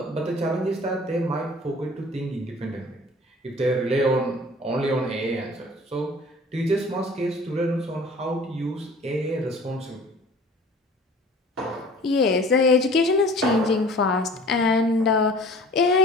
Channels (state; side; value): normal; both; correlation 0.46